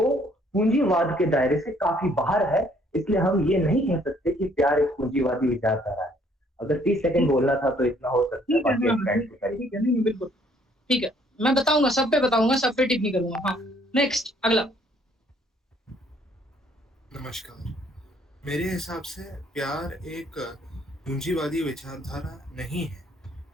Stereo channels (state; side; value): normal; both; correlation 0.63